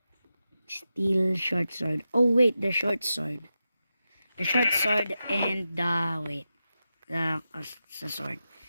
Steel short sword. Oh wait, the short sword. The short sword and the sword.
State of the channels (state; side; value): inverted; both; correlation -0.91